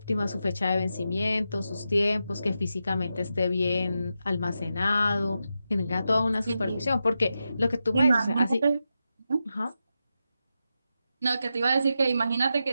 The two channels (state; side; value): inverted; both; correlation -0.88